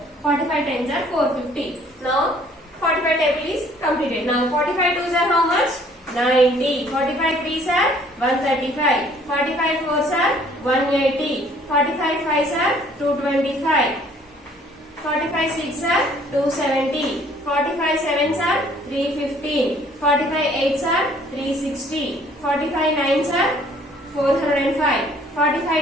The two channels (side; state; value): both; normal; correlation 0.58